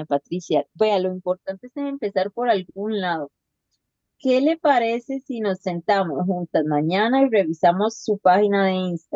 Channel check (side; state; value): both; identical; correlation 1.00